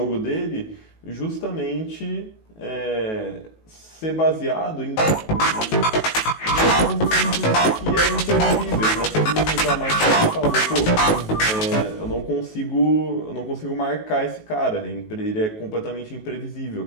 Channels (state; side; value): late; right; 19 ms